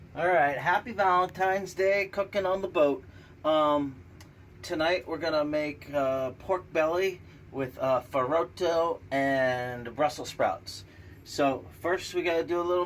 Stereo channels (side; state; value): both; identical; correlation 1.00